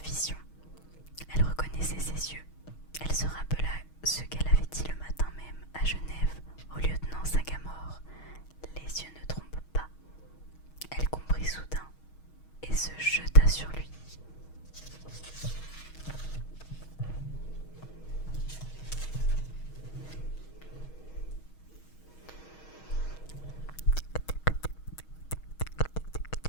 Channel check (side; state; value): right; late; 6.3 ms